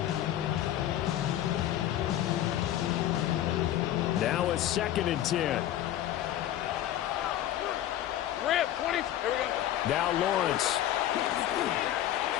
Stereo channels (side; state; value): right; quieter; 12.5 dB